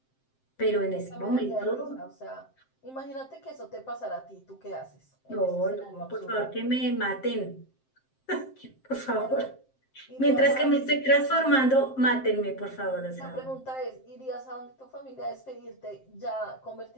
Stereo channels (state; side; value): late; right; 7.6 ms